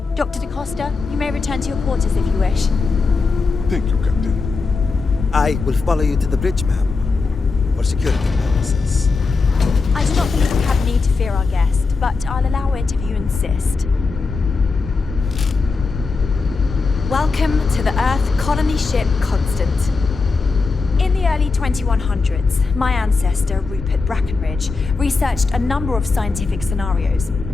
Dr. da Costa, you may return to your quarters if you wish. Thank you, Captain. I will follow you to the bridge, ma'am, for security purposes. I do not believe we have need to fear our guest, but I'll allow it if you insist. Welcome to the Earth colony ship Constant. In the early 2100s, my ancestor, Rupert Brackenridge, researched a number of scientific scenarios:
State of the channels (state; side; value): quieter; right; 4.3 dB